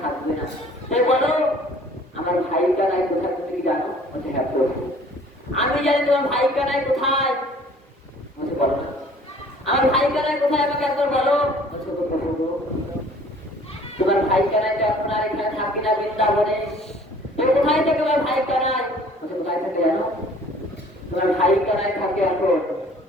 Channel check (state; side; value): normal; both; correlation 0.52